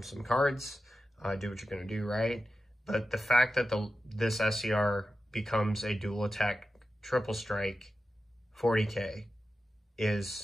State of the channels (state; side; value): normal; both; correlation 0.92